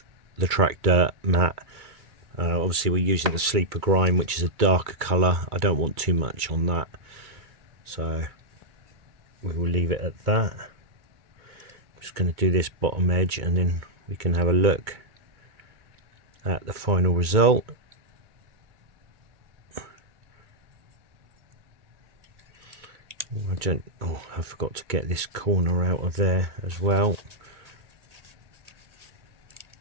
the track dirt mat. Obviously we're using the sleeper grime, which is a darker colour. I don't want too much on that, so we will leave it at that. I'm just going to do this bottom edge and then we can have a look at the final result. I forgot to get this corner out of there as well.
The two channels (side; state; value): left; late; 2.3 ms